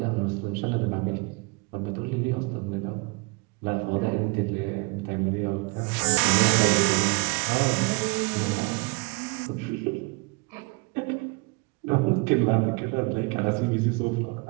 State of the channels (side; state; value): left; quieter; 29.1 dB